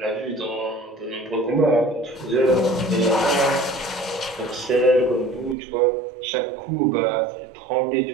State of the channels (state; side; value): drops out; left; at 5.6 s